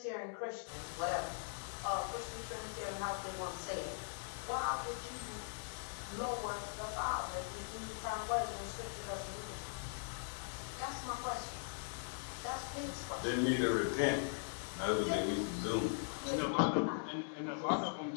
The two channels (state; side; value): silent; right; 51 dB below the other